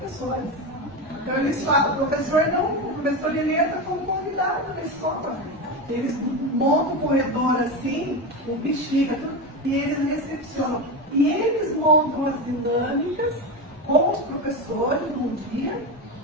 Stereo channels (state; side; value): normal; both; correlation 0.18